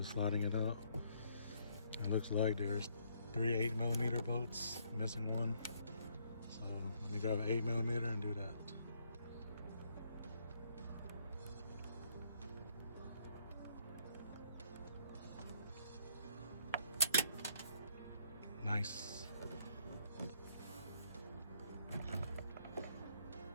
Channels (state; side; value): inverted; both; correlation -0.68